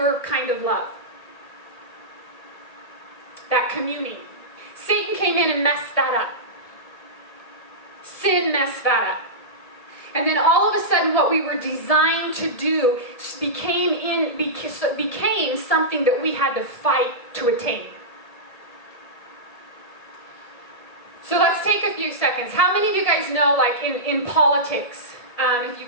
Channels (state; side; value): late; right; 1.8 ms